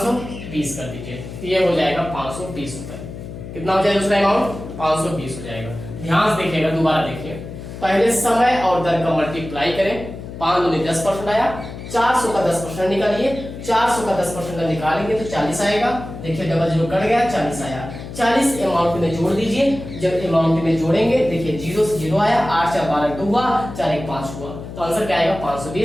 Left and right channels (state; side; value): noise; left; hum, 11 dB below the sound